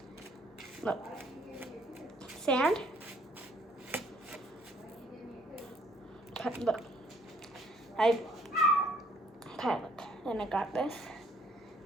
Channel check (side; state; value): both; normal; correlation 0.63